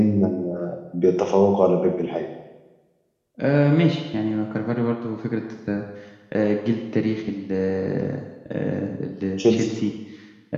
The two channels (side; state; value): both; identical; correlation 1.00